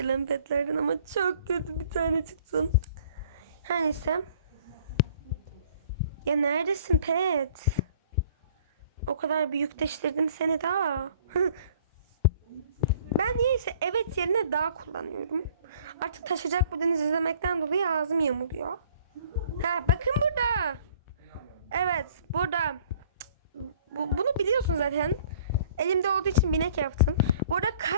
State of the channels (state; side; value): inverted; both; correlation -0.54